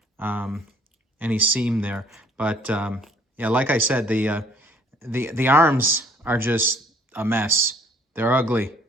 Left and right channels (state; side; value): normal; both; correlation 0.59